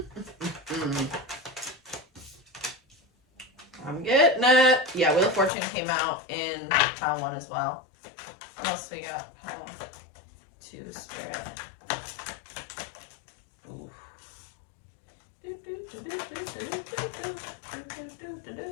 I'm getting it. Yeah, Wheel of Fortune came out in pile 1 as well. What else we got? Pile 2, Spirit. Ooh.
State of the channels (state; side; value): drops out; right; at 5.5 s